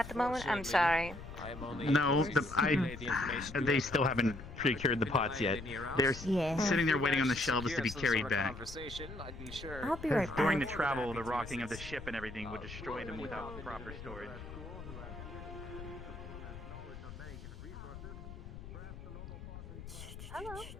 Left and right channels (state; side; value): noise; left; rumble, 12 dB below the sound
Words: the moment? I'm sorry. No, they still haven't procured the pots yet. They're sitting there waiting on the shelves to be carried back. I'll be right During the back. travel, the rocking of the ship and everything would destroy them without proper storage. Hello.